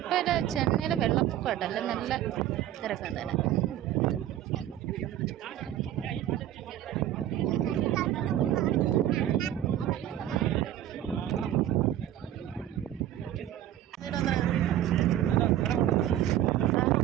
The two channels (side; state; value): left; quieter; 12.2 dB